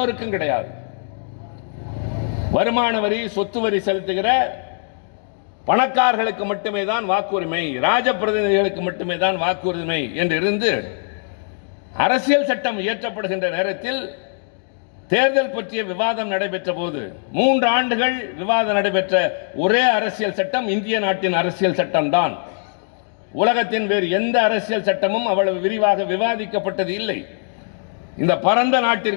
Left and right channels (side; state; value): right; silent; 62 dB below the other